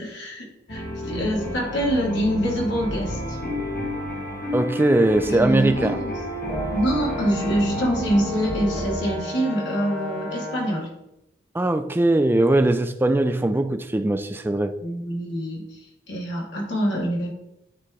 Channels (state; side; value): normal; both; correlation 0.81